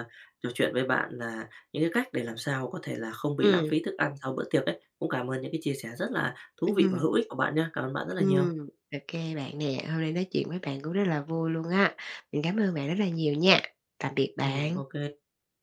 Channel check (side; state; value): both; identical; correlation 1.00